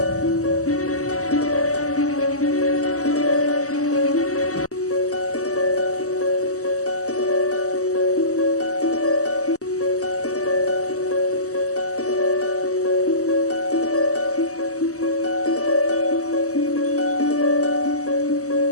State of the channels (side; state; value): right; late; 0.66 ms